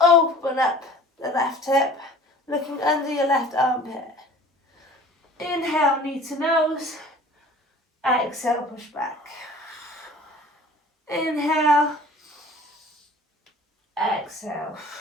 up the left hip, looking under your left armpit. Inhale, knee to nose. Exhale, push back. Inhale. Exhale.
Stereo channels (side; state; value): both; normal; correlation 0.46